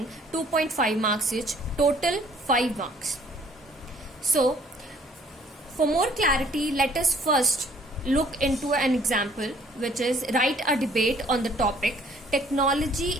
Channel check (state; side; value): normal; both; correlation 0.60